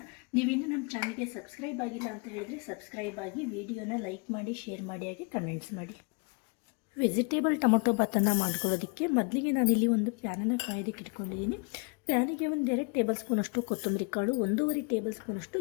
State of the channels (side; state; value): right; quieter; 32.9 dB